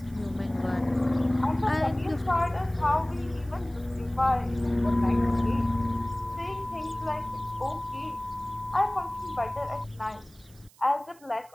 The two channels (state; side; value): noise; right; hiss, 27 dB below the sound